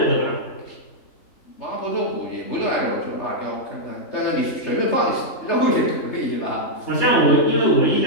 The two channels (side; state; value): right; late; 3.3 ms